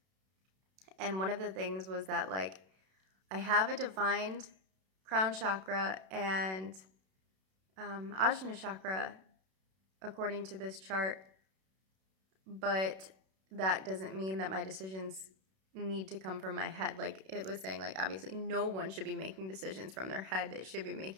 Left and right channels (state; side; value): late; left; 32 ms